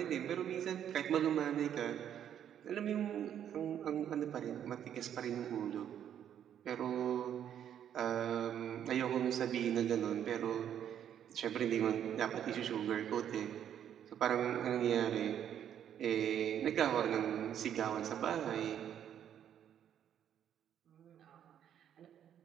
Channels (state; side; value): quieter; left; 9.7 dB